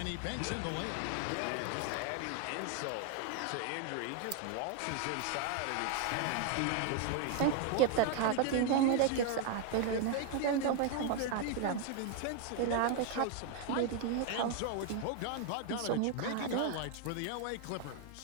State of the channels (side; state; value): both; different; correlation 0.01